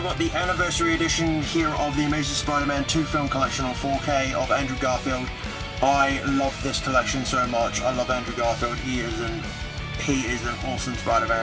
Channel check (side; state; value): both; identical; correlation 1.00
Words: the anniversary edition here of the Amazing Spider-Man 2 film collection on 4K of Andrew Garfield. I love this collection so much. I love Andrew Garfield. He is an awesome